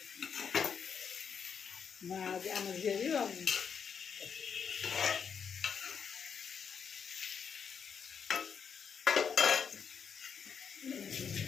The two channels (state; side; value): quieter; right; 6.9 dB